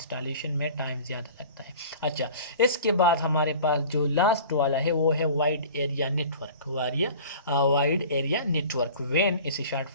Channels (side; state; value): both; inverted; correlation -0.43